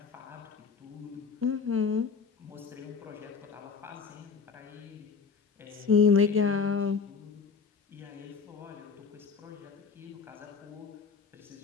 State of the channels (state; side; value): quieter; right; 5.5 dB